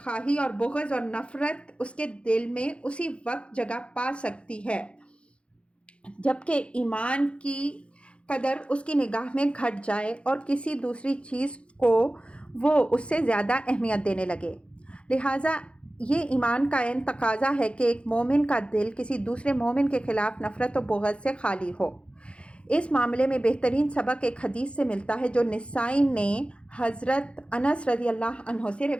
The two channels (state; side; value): late; right; 0.059 ms